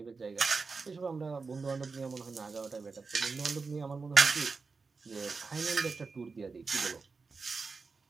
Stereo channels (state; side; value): quieter; left; 4.5 dB